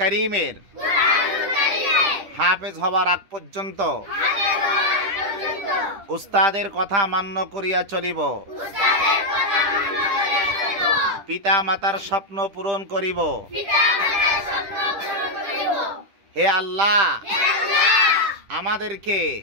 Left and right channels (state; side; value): late; left; 10 ms